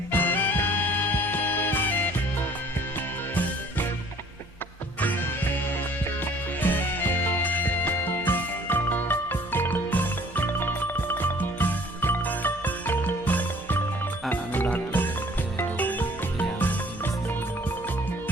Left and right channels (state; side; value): normal; both; correlation 0.54